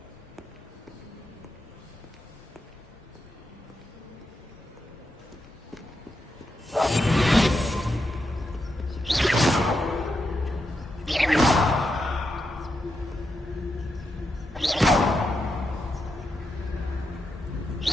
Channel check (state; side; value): normal; both; correlation 0.85